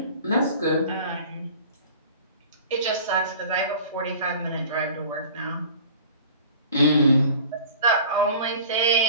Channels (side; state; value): both; inverted; correlation -0.44